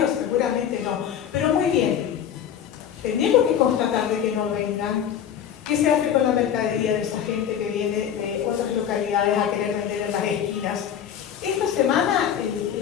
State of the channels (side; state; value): right; quieter; 9.2 dB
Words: seguramente no. Pero muy bien, tenemos que constatar de que no vengan. ¿Qué se hace con la mercadería de esa gente que viene de otras localidades a querer vender en las esquinas? Esta semana,